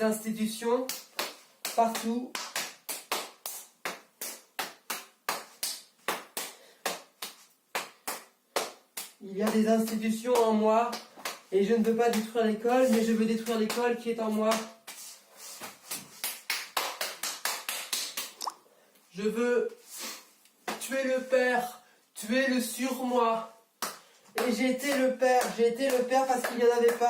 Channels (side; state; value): both; identical; correlation 1.00